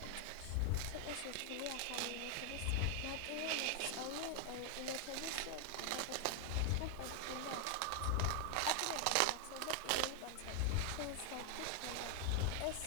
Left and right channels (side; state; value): both; different; correlation 0.00